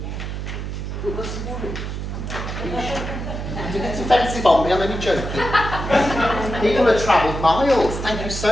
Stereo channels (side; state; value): right; noise; hum, 5 dB below the sound